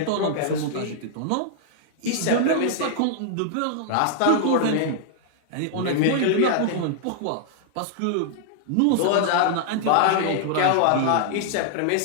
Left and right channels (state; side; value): different; both; correlation -0.01